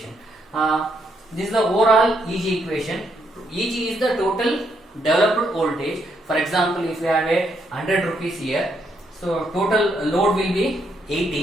This is the overall EG equation. EG is the total developed voltage. For example, if you have a 100 rupees here, so total load will be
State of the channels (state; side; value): normal; both; correlation 0.76